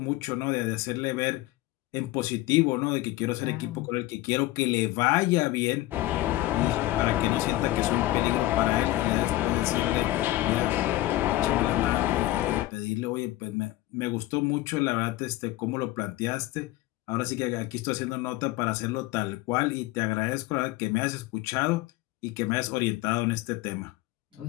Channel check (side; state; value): right; quieter; 17.1 dB